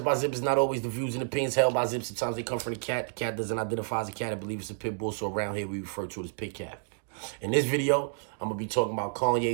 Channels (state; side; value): silent; left; digital silence